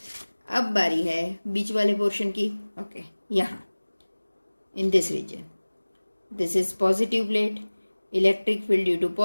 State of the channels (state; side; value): inverted; both; correlation -1.00